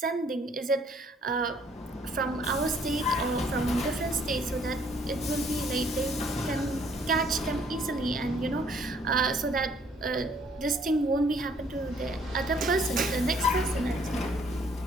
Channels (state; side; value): normal; both; correlation 0.63